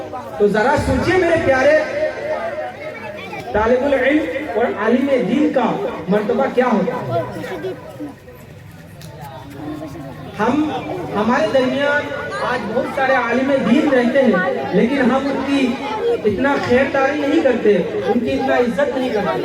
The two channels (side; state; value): both; identical; correlation 1.00